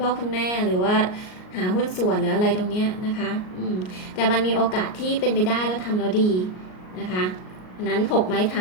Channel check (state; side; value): late; right; 38 ms